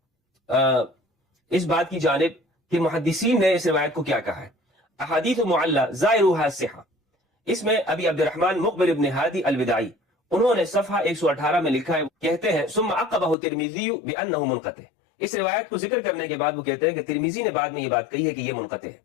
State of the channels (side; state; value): right; drops out; at 13.4 s